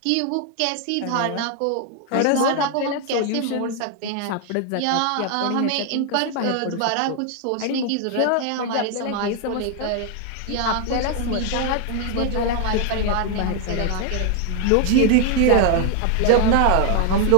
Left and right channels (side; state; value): both; different; correlation 0.00